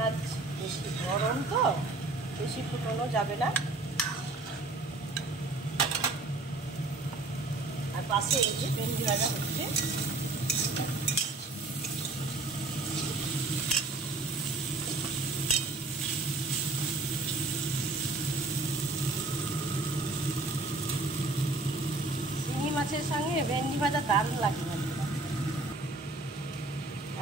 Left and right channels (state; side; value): quieter; left; 3.2 dB